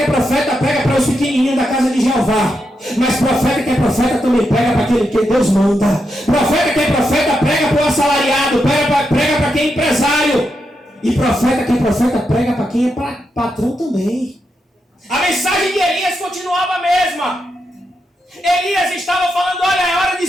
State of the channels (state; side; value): normal; both; correlation 0.84